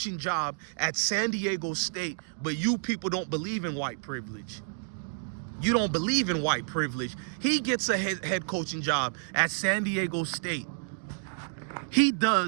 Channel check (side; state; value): left; silent; digital silence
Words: job at San Diego State, but you people don't believe in white privilege. You don't believe in white privilege. He gets a head coaching job at San Diego State. He